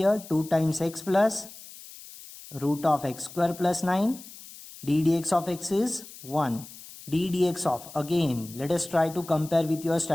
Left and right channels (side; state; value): left; noise; hiss, 17 dB below the sound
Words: 2 times x plus root of x square plus 9, d dx of x is 1. d dx of, again let us try to compare with your